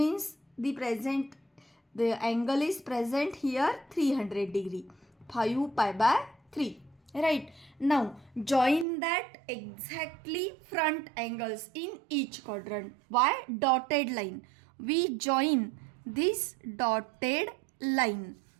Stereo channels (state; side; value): drops out; left; at 8.8 s